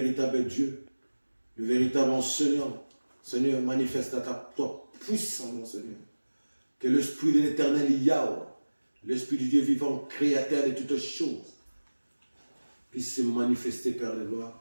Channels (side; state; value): both; inverted; correlation -1.00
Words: Dieu, le véritable enseignant. Seigneur, manifeste toi puissant, Seigneur. Que l'Esprit de l'Éternel Yahweh, l'Esprit du Dieu vivant, créateur de toutes choses, puisse se manifester, Père de gloire,